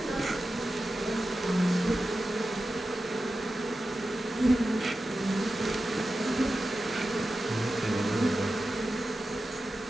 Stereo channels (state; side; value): normal; both; correlation 0.93